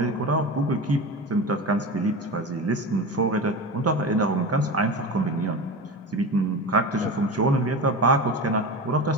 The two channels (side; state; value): both; normal; correlation 0.27